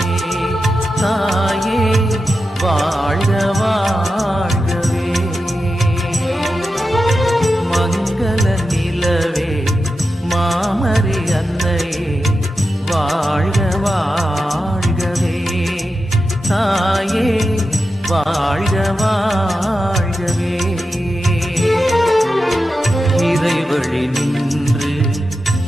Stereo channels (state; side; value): normal; both; correlation 0.90